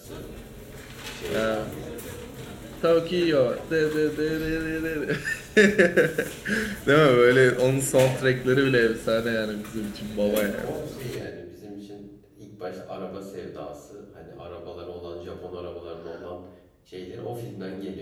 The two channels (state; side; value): identical; both; correlation 1.00